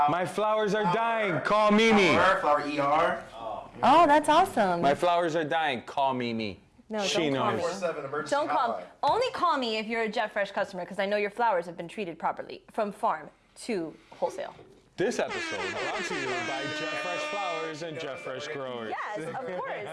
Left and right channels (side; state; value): both; identical; correlation 1.00